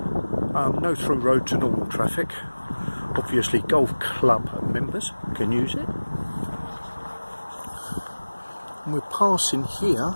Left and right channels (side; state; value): both; inverted; correlation -1.00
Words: No through road to normal traffic. Obviously golf club members can use it. And we're passing here